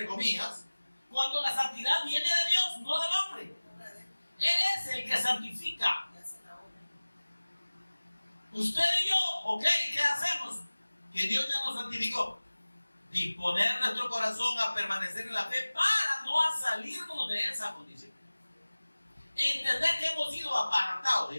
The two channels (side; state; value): both; inverted; correlation -1.00